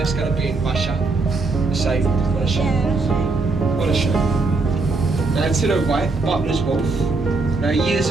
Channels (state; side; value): quieter; left; 3.7 dB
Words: going to be in Russia. So, what a shame. What a shame. Now to the right, Butler's Wharf. Now years